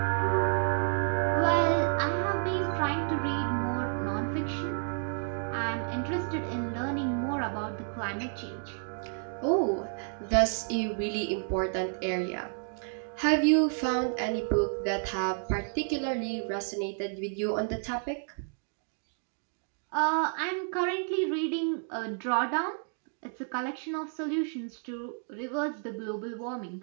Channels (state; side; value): silent; left; 57 dB below the other